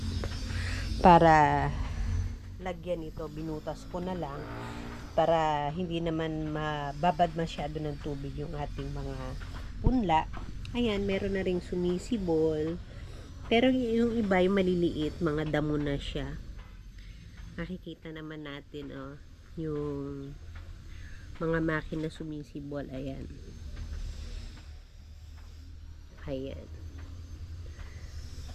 para lagyan ito. Binutas ko na lang para hindi naman mababad masyado ng tubig yung ating mga punla. Ayan, meron na ring sumisibol. Pero yung iba, yung maliliit, mga damo na siya. Nakikita naman natin, yung mga makina sumisibol. Ayan. Ayan.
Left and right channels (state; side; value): identical; both; correlation 1.00